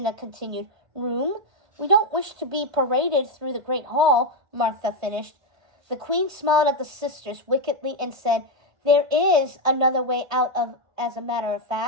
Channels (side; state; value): left; late; 1.5 ms